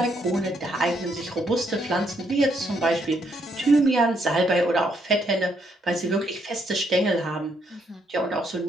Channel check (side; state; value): both; normal; correlation 0.74